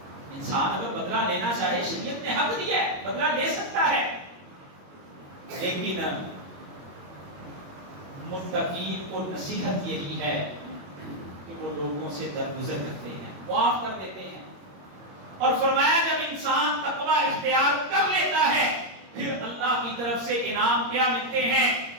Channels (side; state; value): left; late; 21 ms